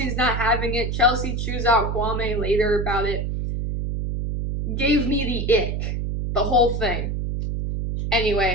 not having it. Chelsea chews out Kwame later about it. Gave me the ick. The whole thing.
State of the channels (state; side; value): noise; right; hum, 2 dB below the sound